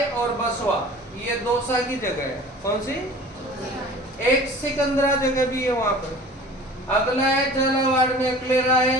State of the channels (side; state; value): both; normal; correlation 0.43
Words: और बसवा, ये दौसा की जगह है। कौन सी? एक सिकंदरा जगह भी है वहां पर। अगला है झालावाड़ में अकलेरा